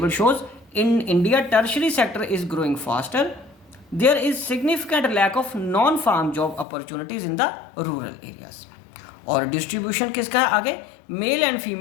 shows in India tertiary sector is growing faster there is significant lack of non farm job opportunities in the rural areas. और डिस्ट्रीब्यूशन किसका है आगे, male and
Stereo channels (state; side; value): drops out; right; at 6.7 s